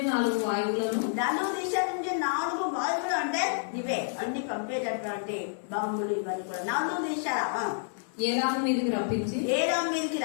4 వాయువులను 4 దిశల నుంచి 4 వాయువులు అంటే ఇవే అన్ని పంపేటటువంటి బాంబులు ఇవన్నీ కూడా 4 దిశల ఏలాము మీదకి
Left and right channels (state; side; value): silent; right; 58 dB below the other